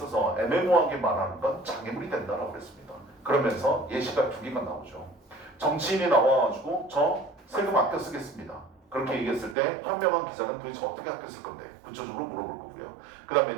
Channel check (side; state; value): left; drops out; at 9.6 s